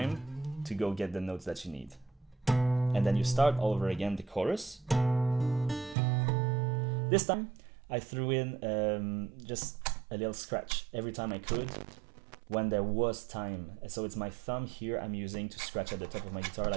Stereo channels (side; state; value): left; drops out; at 6.0 s